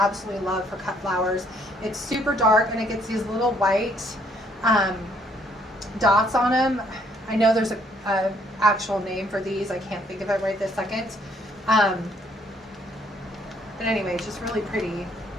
love for cut flowers. It's super dark, and it gets these little white dots on them. I know there's a actual name for these. I can't think of it right this second. But anyway, it's just really pretty.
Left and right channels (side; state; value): both; normal; correlation 0.66